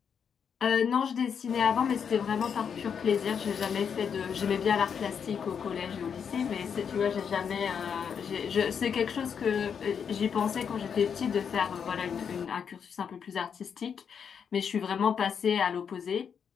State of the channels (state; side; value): quieter; right; 7.1 dB